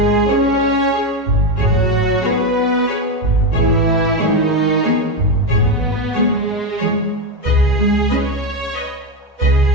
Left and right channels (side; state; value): both; normal; correlation 0.12